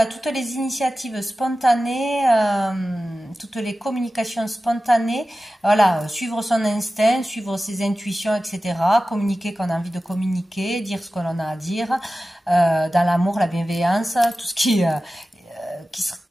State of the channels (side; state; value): both; normal; correlation 0.95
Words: toutes les initiatives spontanées, toutes les communications spontanées, voilà, suivre son instinct, suivre ses intuitions, etc. Communiquer quand on a envie de communiquer, dire ce qu'on a à dire, dans l'amour, la bienveillance, tout ce qui